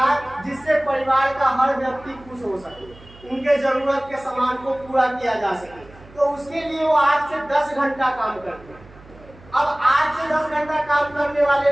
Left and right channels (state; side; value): noise; right; hum, 22 dB below the sound